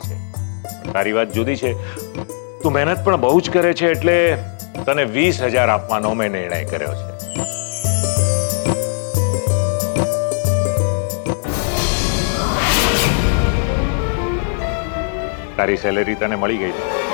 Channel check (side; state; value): right; silent; digital silence